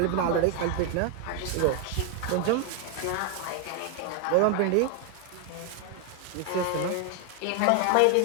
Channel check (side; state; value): both; different; correlation 0.01